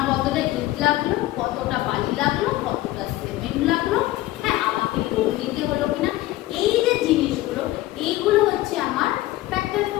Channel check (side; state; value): right; quieter; 16.6 dB